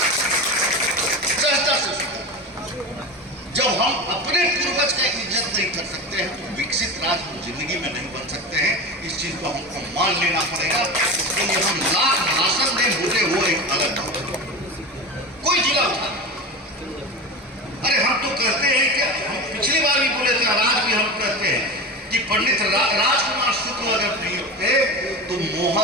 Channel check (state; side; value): normal; both; correlation 0.26